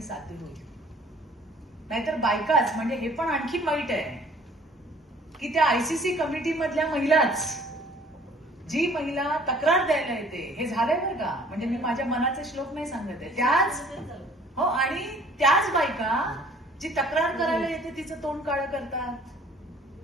साध्य होईल. नाहीतर बायकाच, म्हणजे हे पण आणखी वाईट आहे की त्या आयसीसी कमिटी मधल्या महिलाच, जी महिला तक्रार द्यायला येते, हे झालंय बरं का, म्हणजे मी माझ्या मनाचे श्लोक नाही सांगत आहे, त्याच हो, आणि त्याच बायका जी तक्रार करायला येते तिचं तोंड काळं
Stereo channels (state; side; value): normal; both; correlation 0.54